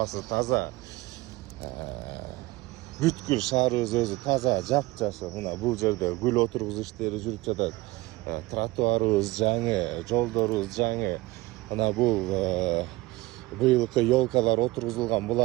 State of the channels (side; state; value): left; quieter; 20.5 dB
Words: таза. Бүткүл шаарыбыз өзү таза, жап-жашыл. Мына бул жерде гүл отургузуу иштери жүрүп жатат. Тротуарыбыз жаңы, жолдорубуз жаңы. Мына бул быйылкы елкалар отургузулган.